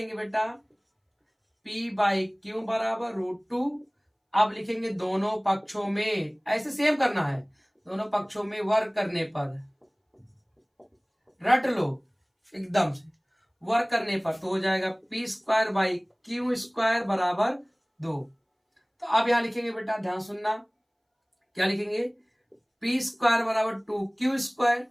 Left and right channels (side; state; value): both; identical; correlation 1.00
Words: बेटा p/q बराबर √2। अब लिखेंगे दोनों पक्षों में, ऐसे सेम करना है, दोनों पक्षों में वर्ग करने पर, रट लो एकदम से, वर्ग करने पर तो हो जाएगा p² / q² बराबर 2। तो अब यहां लिखेंगे बेटा, ध्यान सुनना, क्या लिखेंगे, p² बराबर 2q²,